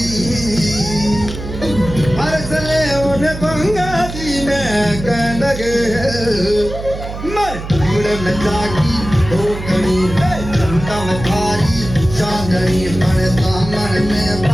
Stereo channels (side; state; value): right; noise; hum, 9 dB below the sound